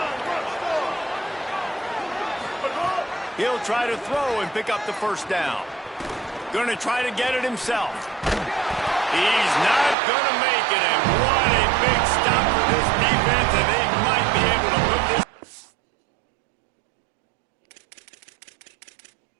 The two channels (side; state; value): left; drops out; at 10.0 s